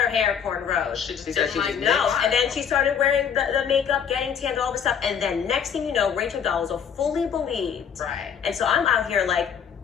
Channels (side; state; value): right; quieter; 7.5 dB